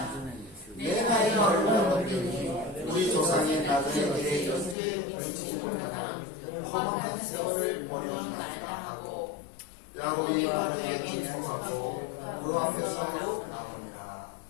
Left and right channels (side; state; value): right; drops out; at 4.8 s